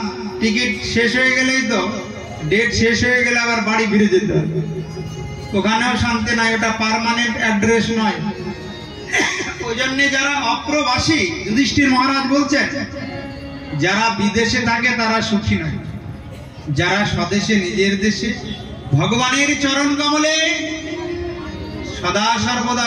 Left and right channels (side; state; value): both; identical; correlation 1.00